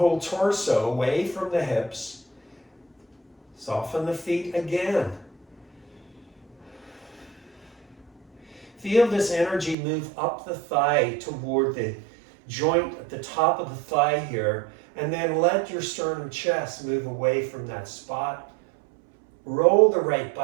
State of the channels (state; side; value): drops out; left; at 9.8 s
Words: torso away from the hips. Soften the feet again. Feel this energy move up the thigh toward the joint at the top of the thigh here, and then let your sternum chest move away from that spot. Roll the right